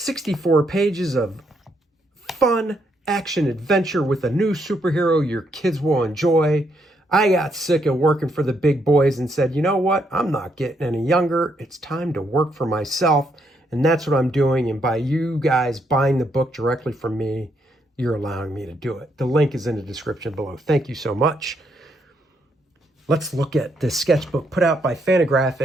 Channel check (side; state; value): both; normal; correlation 0.75